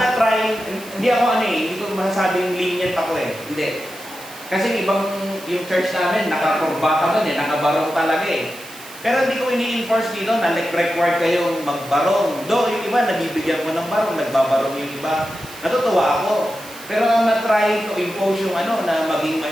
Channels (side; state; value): right; noise; hiss, 17 dB below the sound